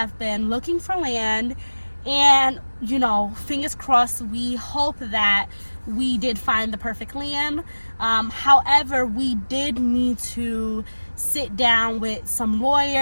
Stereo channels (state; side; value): inverted; both; correlation -1.00